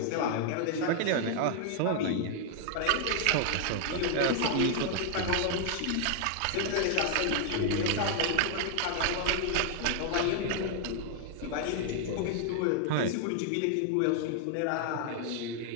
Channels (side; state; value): both; different; correlation 0.00